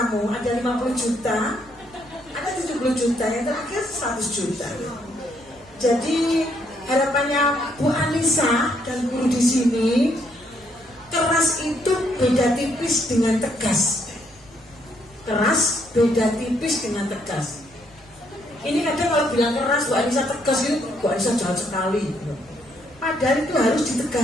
Ada 50 juta, ada 70 juta, yang terakhir 100 juta. Jadi harapannya Bu Anissa dan guru di sini, keras itu beda tipis dengan tegas. Keras beda tipis dengan tegas. Ini kadang kalau bilang keras, Bu Anissa tegas itu, Bu Anissa jahat sekali. Padahal itu harus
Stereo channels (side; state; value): right; noise; hum, 27 dB below the sound